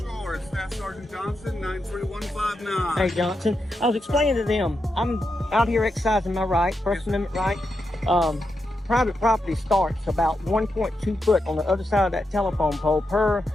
it's Staff Sergeant Johnson, 93159. Hey, Johnson. I was explaining to them, I'm out here exercising my right, First Amendment right. Private property starts about 1.2 foot on the other side of that telephone pole per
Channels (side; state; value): both; normal; correlation 0.86